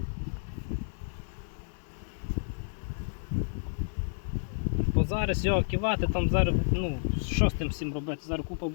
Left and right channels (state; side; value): silent; right; digital silence